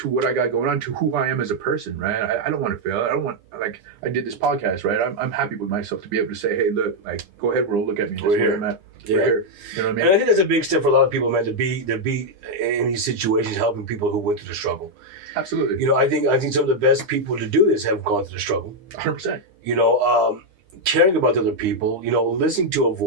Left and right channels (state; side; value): late; left; 9.9 ms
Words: what I got going on, to who I am as a person, right? I don't want to fail. I don't want, like, I did this podcast, right? I'm happy with myself to be able to say, hey, look, like, go ahead, world, look at me. That's where I'm at. Yeah. We're here. You know what I mean? And I think that's a big step for a lot of people, man, to be in these situations, helping people who went through the struggle. Absolutely. You know, I think some of the best people to do this have gone through the struggle. 100%. You know, caring about the other people, you know, listening to a